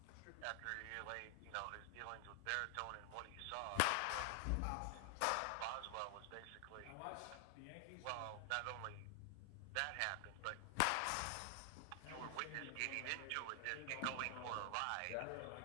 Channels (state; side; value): different; both; correlation 0.00